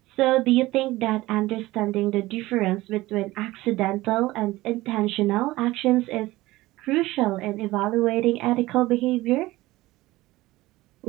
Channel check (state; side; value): quieter; left; 18.3 dB